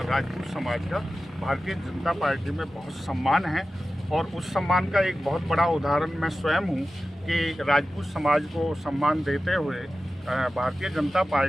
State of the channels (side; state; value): both; normal; correlation 0.94